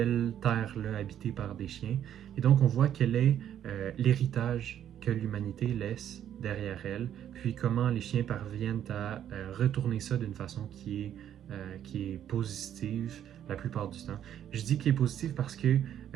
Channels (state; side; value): quieter; left; 10.3 dB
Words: terre-là habitée par des chiens. Et donc, on voit quel est l'héritage que l'humanité laisse derrière elle, puis comment les chiens parviennent à retourner ça d'une façon qui est positive la plupart du temps. Je dis qu'il est positif parce que